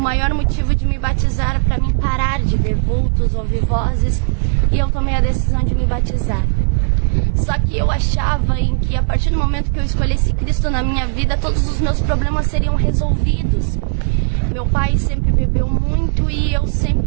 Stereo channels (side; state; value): left; silent; 57 dB below the other